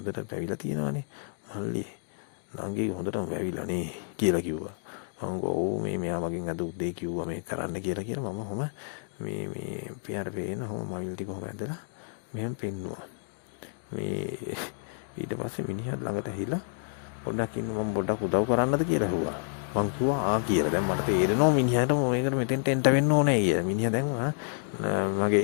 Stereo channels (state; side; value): silent; right; digital silence